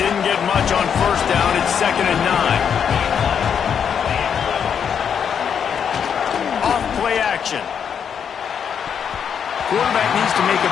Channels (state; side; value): quieter; right; 7.6 dB